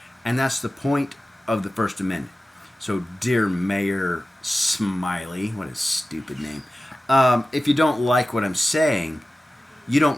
and that's the point of the First Amendment. So, dear Mayor Smiley, what a stupid name, if you don't like what I'm saying, you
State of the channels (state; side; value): normal; both; correlation 0.95